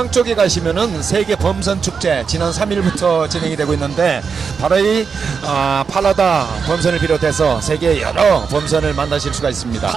쪽에 가시면은 세계 범선 축제 지난 3일부터 진행이 되고 있는데 바로 이 팔라다 범선을 비롯해서 세계 여러 범선을 만나실 수가 있습니다.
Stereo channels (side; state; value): left; quieter; 5.8 dB